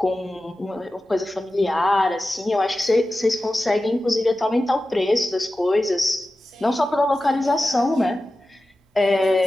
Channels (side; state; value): both; normal; correlation 0.94